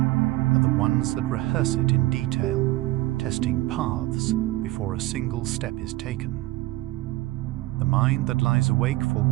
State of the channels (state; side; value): quieter; left; 18.5 dB